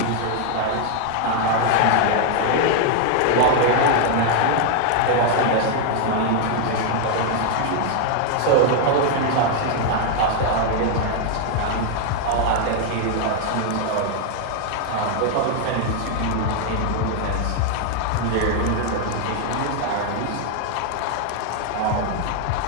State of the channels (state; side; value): different; both; correlation 0.00